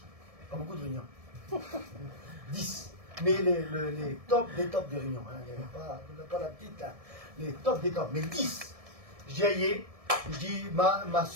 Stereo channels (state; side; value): late; left; 1.7 ms